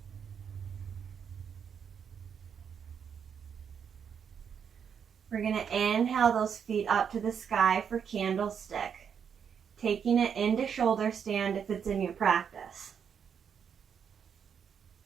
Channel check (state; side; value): quieter; left; 7.4 dB